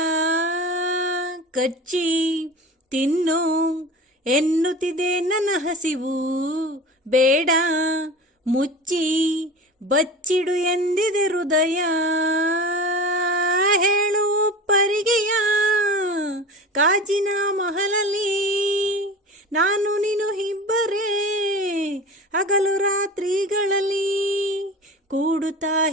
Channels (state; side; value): normal; both; correlation 0.34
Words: ಕಚ್ಚಿ ತಿನ್ನು ಎನ್ನುತ್ತಿದೆ ನನ್ನ ಹಸಿವು, ಬೇಡ ಮುಚ್ಚಿ ಬಚ್ಚಿಡು ಎಂದಿದೆ ಹೃದಯ. ಹೇಳು ಪರಿಗೆಯ ಕಾಜಿನ ಮಹಲಲ್ಲಿ ನಾನು ನೀನು ಇಬ್ಬರೇ, ಹಗಲು ರಾತ್ರಿಗಳಲ್ಲಿ ಕೂಡುತ್ತಾ